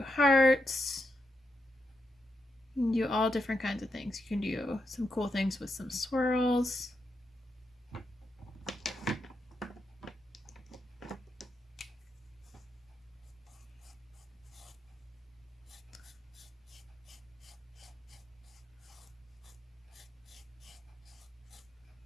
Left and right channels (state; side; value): normal; both; correlation 0.84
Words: hearts. You can do all different kinds of things. You can do some cool things with some swirls.